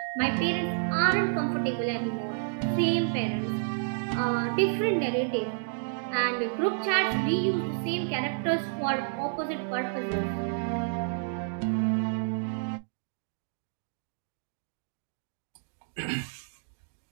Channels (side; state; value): left; silent; digital silence